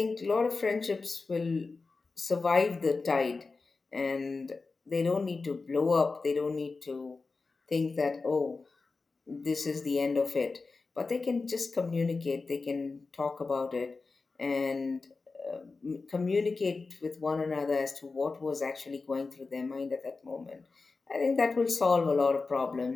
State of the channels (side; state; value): right; quieter; 4.0 dB